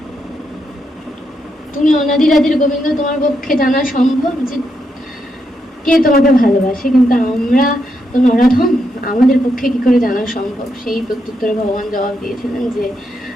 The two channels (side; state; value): both; normal; correlation 0.81